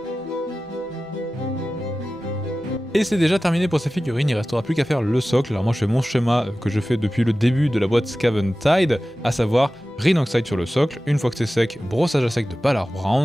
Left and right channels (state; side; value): normal; both; correlation 0.95